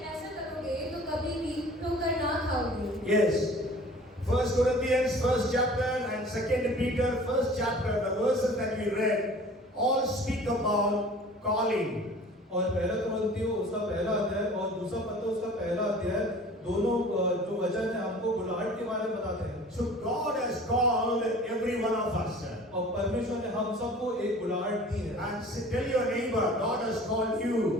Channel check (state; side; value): normal; both; correlation 0.46